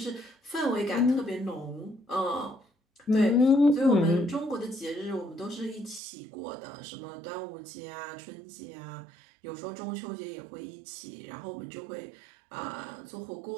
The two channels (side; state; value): left; drops out; at 6.0 s